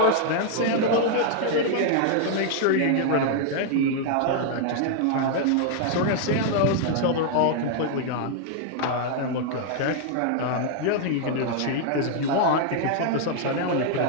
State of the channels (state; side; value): different; both; correlation 0.00